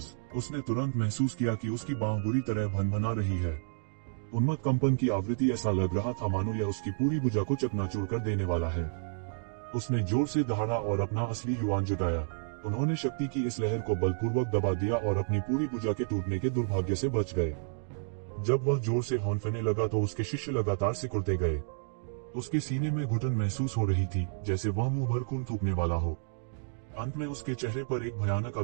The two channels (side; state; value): left; silent; digital silence